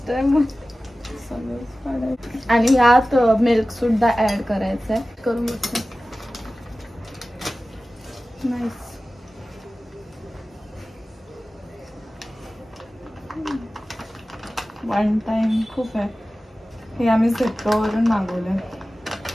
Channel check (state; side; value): normal; both; correlation 0.96